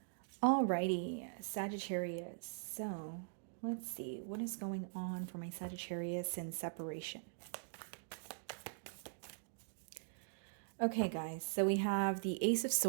Alrighty, Sagittarius. So let's see, what is going on for my Sagittarius in separation? Okay, guys, so we have the Ace of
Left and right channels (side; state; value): left; silent; digital silence